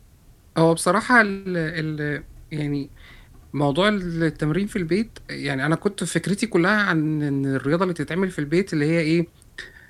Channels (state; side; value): identical; both; correlation 1.00